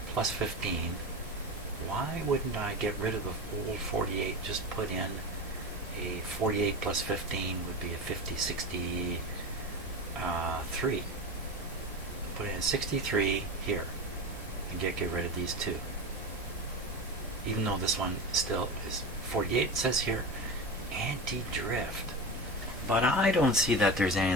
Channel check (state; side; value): normal; both; correlation 0.24